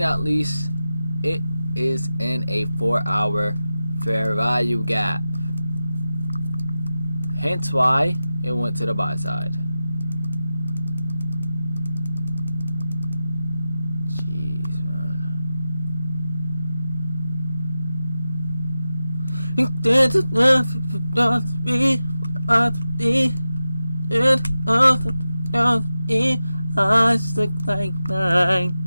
not least, it is in a 4-hour fair value gap. Hence why it went to the buy side. Jeez, man. Eyes look like mine.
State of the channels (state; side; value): inverted; both; correlation -0.92